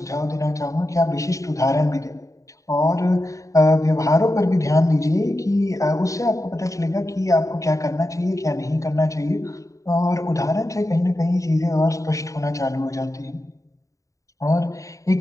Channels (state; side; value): late; right; 0.16 ms